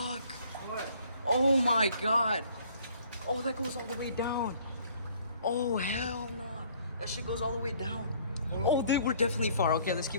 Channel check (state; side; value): inverted; both; correlation -0.59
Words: What? Oh my god. Oh, that goes all the way down. Oh, hell no. That shit goes all the way down. Oh, dude, we're definitely far. Okay, let's